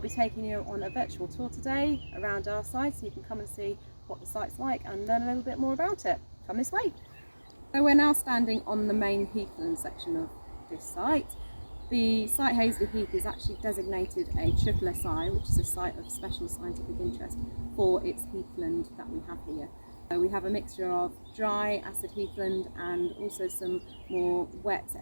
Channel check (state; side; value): inverted; both; correlation -1.00